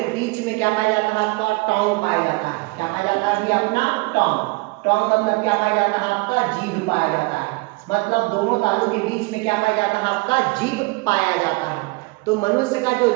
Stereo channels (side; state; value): left; quieter; 25.5 dB